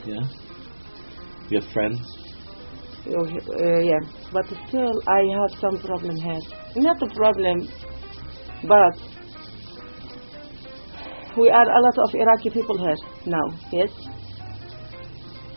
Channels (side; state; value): both; inverted; correlation -1.00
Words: Yeah. You have friends. Yeah. But still, I have some problem here. Not a problem, but we are a lot of Iraqi people here now. Yes.